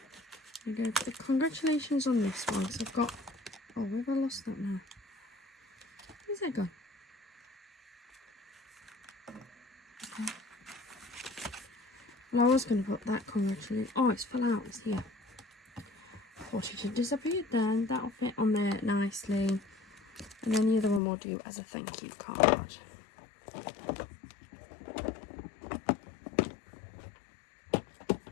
We go for the congratulations on this one. So I've got, oh, where have I lost that now? Where's that gone? Okay. Well, I was going to put that congratulations. Oh, it's fell out. It's here. I thought it had disappeared then. That'll fit on there nicely. And then the other one we'll do as a thank you card.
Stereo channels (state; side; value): drops out; right; at 21.0 s